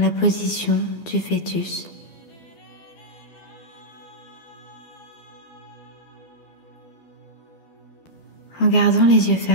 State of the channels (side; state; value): right; late; 12 ms